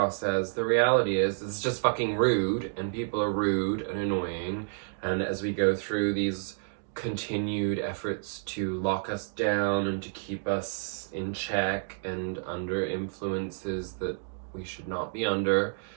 as? The reality is it's just fucking rude, and people are rude and annoying, and as we go through these continued efforts to lock us down and to keep us in check and under influences that we should not be under,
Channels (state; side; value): silent; left; digital silence